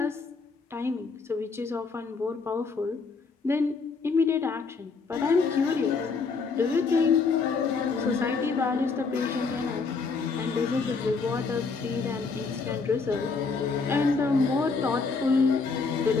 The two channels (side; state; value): right; quieter; 4.6 dB